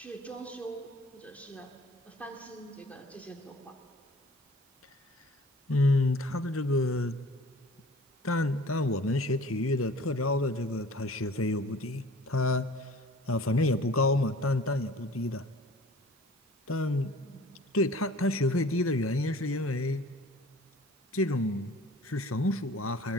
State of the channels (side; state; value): both; normal; correlation 0.47